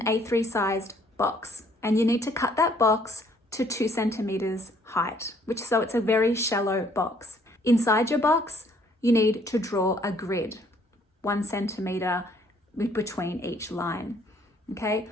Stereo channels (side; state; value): both; normal; correlation 0.63